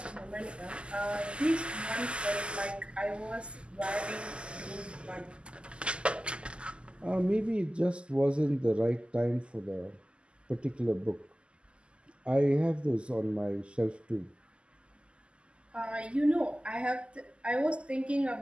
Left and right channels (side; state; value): left; late; 0.052 ms